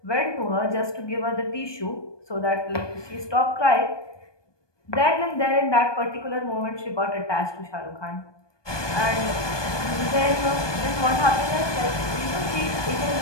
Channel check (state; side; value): late; right; 1.2 ms